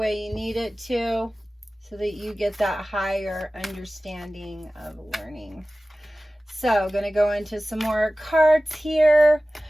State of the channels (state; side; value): normal; both; correlation 0.96